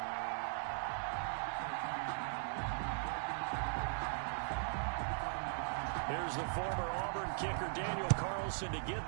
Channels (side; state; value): left; silent; digital silence